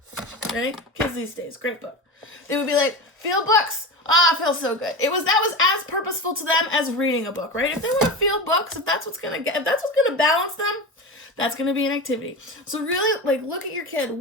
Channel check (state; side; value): normal; both; correlation 0.25